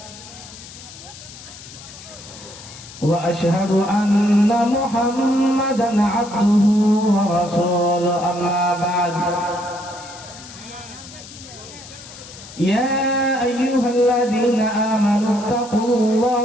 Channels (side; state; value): left; noise; hiss, 16 dB below the sound